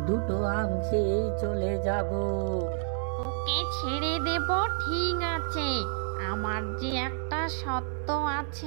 দুটো আম খেয়ে চলে যাব। ওকে ছেড়ে দেব, ঠিক আছে। আমার যে একটা সত্য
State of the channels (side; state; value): left; silent; digital silence